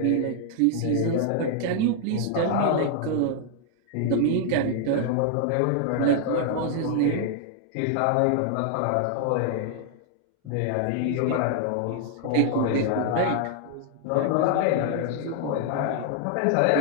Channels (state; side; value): different; both; correlation 0.00